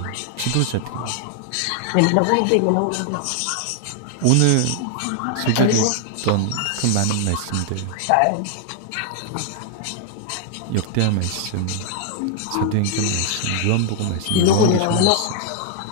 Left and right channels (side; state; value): both; different; correlation 0.00